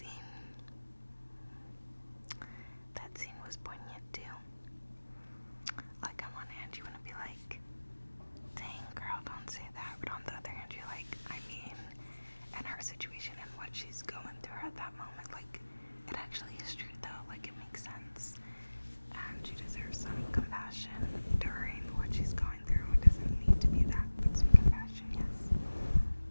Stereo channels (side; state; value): both; inverted; correlation -1.00